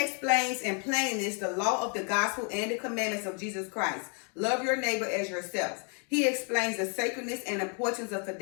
in plainness the law of the gospel and the commandments of Jesus Christ. Love your neighbor as yourself. He explains the sacredness and importance of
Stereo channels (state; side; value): quieter; right; 39.0 dB